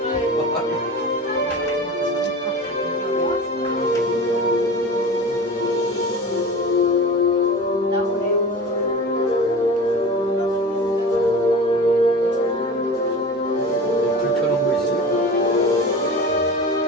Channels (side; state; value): both; normal; correlation 0.34